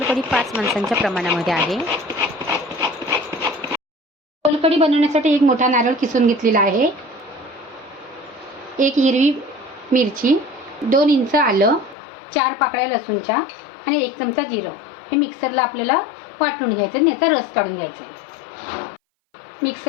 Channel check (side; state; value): right; drops out; at 12.0 s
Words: 5 माणसांच्या प्रमाणामध्ये आहे। सोलकढी बनवण्यासाठी एक मोठा नारळ किसून घेतलेला आहे, एक हिरवी मिरची, 2 इंच आलं, 4 पाकळ्या लसूणच्या आणि 1 चमचा जिरं हे मिक्सरला आपल्याला वाटून घ्यायचं आणि याचा रस काढून घ्यायचा आहे।